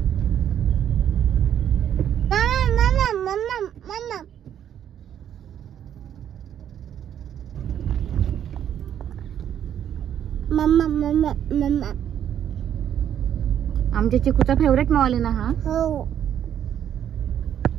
आमच्या चिकूचा फेवरेट मॉल आहे ना हा? हो.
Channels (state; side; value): quieter; left; 9.8 dB